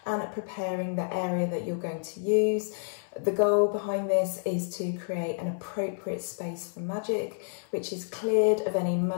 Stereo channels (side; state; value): right; silent; 58 dB below the other